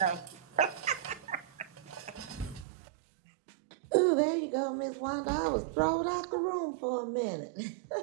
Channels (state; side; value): drops out; left; at 2.7 s